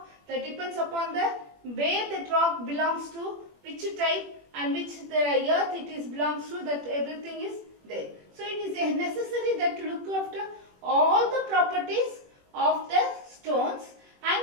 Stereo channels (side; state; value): left; late; 21 ms